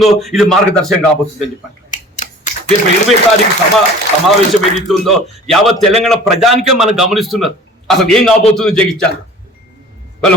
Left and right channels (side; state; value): both; normal; correlation 0.45